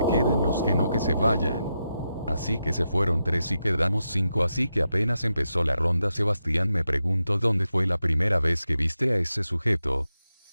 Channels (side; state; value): both; inverted; correlation -0.87